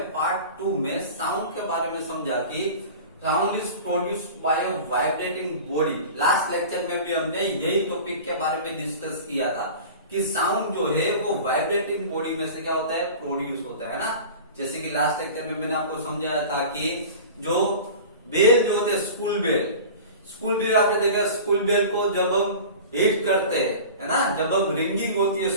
part 2 में sound के बारे में समझा कि sound is produced by a vibrating body. Last lecture में भी हमने यही टॉपिक के बारे में डिस्कस किया था कि साउंड जो है वो वाइब्रेटिंग बॉडी में से क्या होता है, प्रोड्यूस होता है ना। जैसे कि लास्ट लेक्चर में मैंने आपको समझाया था कि जो बेल जो होते हैं स्कूल बेल आपने देखा, स्कूल बेल को जब हम हिट करते हैं है ना, जब हम रिंगिंग होती है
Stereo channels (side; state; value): both; inverted; correlation -0.37